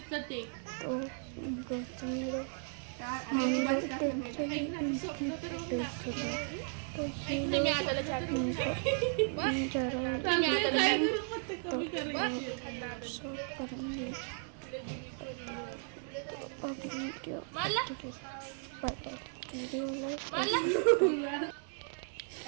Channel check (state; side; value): silent; left; 54 dB below the other